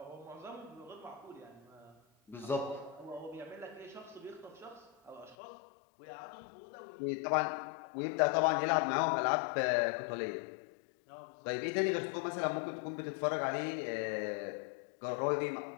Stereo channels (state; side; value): drops out; right; at 5.4 s